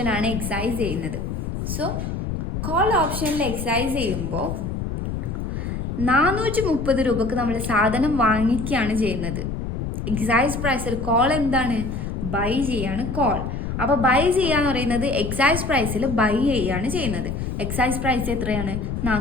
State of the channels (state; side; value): noise; left; rumble, 4 dB below the sound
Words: എക്സൈസ് ചെയ്യുന്നത്. സോ കോൾ ഓപ്ഷനിൽ എക്സൈസ് ചെയ്യുമ്പോൾ 430 രൂപക്ക് നമ്മൾ സാധനം വാങ്ങിക്കുകയാണ് ചെയ്യുന്നത്. എക്സൈസ് പ്രൈസിൽ കോൾ എന്താണ് ബൈ ചെയ്യാണ് കോൾ. അപ്പോൾ ബൈ ചെയ്യാന്ന് പറയുന്നത് എക്സൈസ് പ്രൈസിൽ ബൈ ചെയ്യാണ് ചെയ്യുന്നത്. എക്സൈസ് പ്രൈസ് എത്രയാണ്